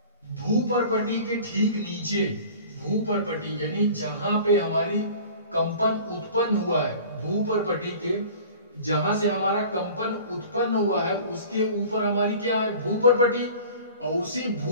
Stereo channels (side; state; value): both; inverted; correlation -0.43